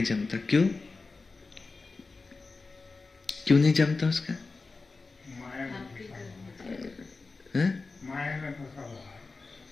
जमता। क्यों नहीं जमता उसका?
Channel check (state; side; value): quieter; right; 3.9 dB